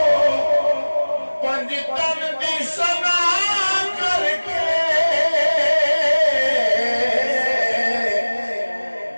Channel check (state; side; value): inverted; both; correlation -1.00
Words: पंज तन दी सना करके